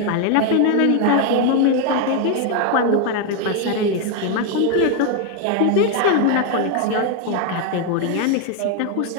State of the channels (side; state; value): both; different; correlation 0.01